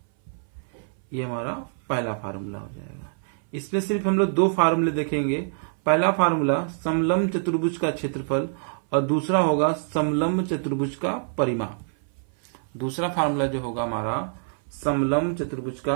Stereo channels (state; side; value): silent; left; 59 dB below the other